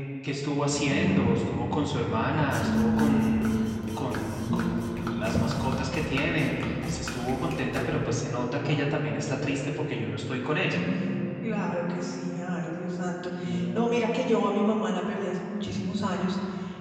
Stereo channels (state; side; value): identical; both; correlation 1.00